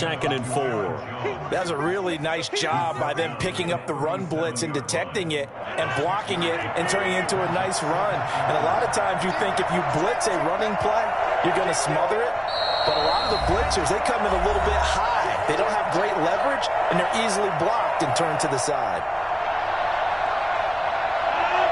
and 4. That's a really nice job by them picking up the run blitz and detecting it and blocking it and turning it into a nice run. And a lot of times you think if you blitz a running play, you're going to smother it. But a lot of the blitzers, they come in a little bit high. They don't have great leverage, and they're easily blocked and turned to the side.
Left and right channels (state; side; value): identical; both; correlation 1.00